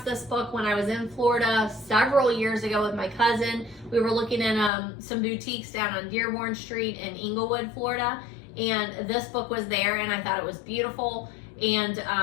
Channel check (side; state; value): right; drops out; at 4.7 s